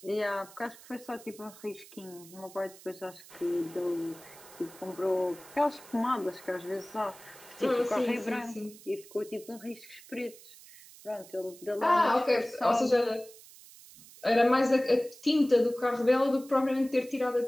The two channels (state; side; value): noise; right; hiss, 20 dB below the sound